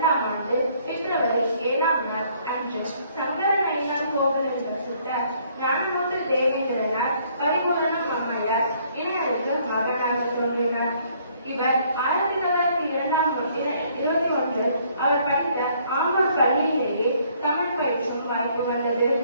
ஆண்டு பிப்ரவரி 7ஆம் நாள் அன்று சங்கர நயினார் கோவிலில் வசித்த ஞானமூர்த்தி தேவேந்திரனார் பரிபூரணம் அம்மையார் இணையருக்கு மகனாக தோன்றினார். இவர் 1921 அவர் படித்த ஆம்பூர் பள்ளியிலேயே தமிழ் பயிற்சியும் வாய்ப்பு வந்தது.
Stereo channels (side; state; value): both; inverted; correlation -0.64